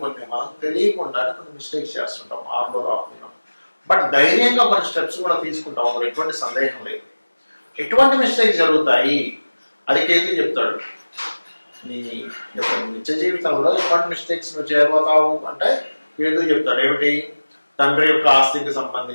మనం తెలియకుండా కొన్ని మిస్టేక్స్ చేస్తుంటాం 6లో రాకుండా. బట్ ధైర్యంగా కొన్ని స్టెప్స్ కూడా తీసుకుంటాం, ఎటువంటి సందేహం లేదు. ఎటువంటి మిస్టేక్స్ జరుగుతాయి అది కేతు చెప్తాడు. నీ యొక్క నిత్య జీవితంలో ఎటువంటి మిస్టేక్స్ నువ్వు చేయబోతావు అంటే కేతు చెప్తాడు. ఏమిటి? తండ్రి యొక్క ఆస్తికి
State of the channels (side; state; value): both; inverted; correlation -1.00